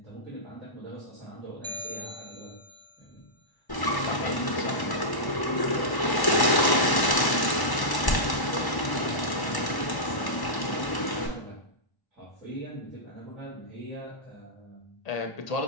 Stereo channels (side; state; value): right; late; 1.1 ms